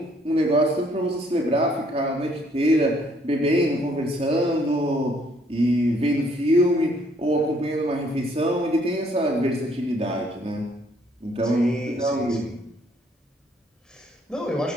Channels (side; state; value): both; normal; correlation 0.65